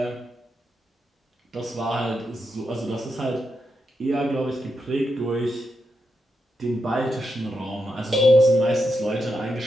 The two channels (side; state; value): both; normal; correlation 0.85